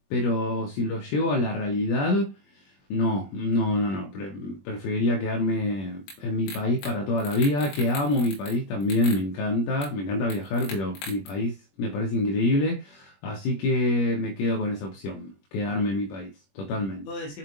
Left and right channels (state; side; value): late; right; 21 ms